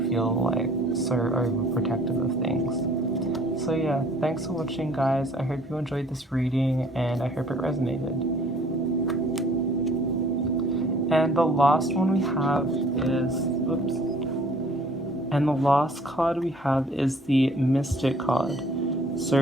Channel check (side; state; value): both; normal; correlation 0.55